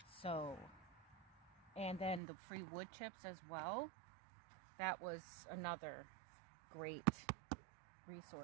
So, and then the free wood chips as well. That was another great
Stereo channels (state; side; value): drops out; left; at 2.2 s